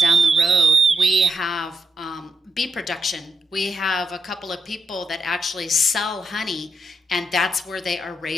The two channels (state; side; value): normal; both; correlation 0.83